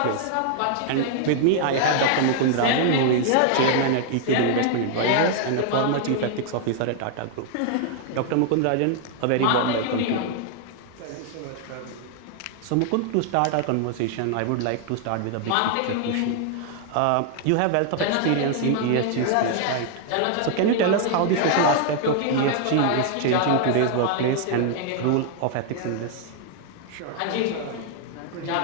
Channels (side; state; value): both; different; correlation 0.00